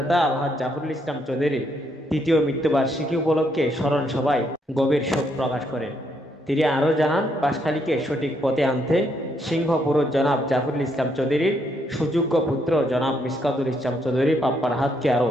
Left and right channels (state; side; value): normal; both; correlation 0.74